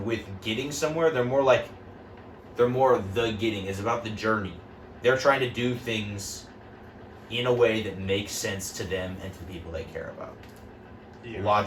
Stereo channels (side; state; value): both; identical; correlation 1.00